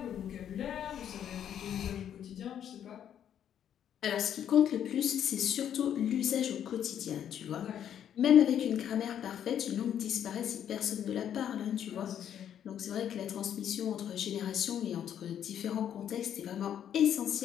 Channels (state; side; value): quieter; right; 9.6 dB